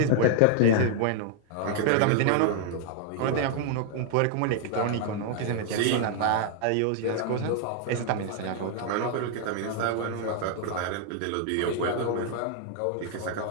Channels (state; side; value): different; both; correlation 0.00